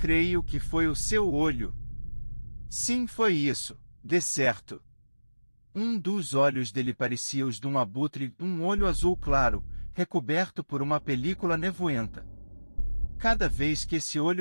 que foi o seu olho. Sim, foi isso, de certo. Um dos olhos dele parecia os de um abutre, um olho azul claro, recoberto por uma película nevoenta. Cada vez que esse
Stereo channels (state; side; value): inverted; both; correlation -1.00